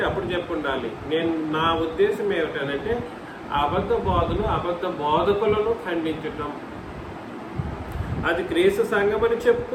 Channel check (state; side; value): identical; both; correlation 1.00